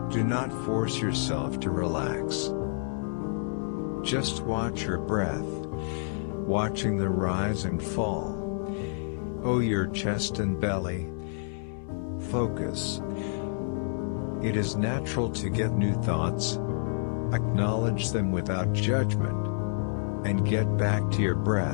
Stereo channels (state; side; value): silent; right; 59 dB below the other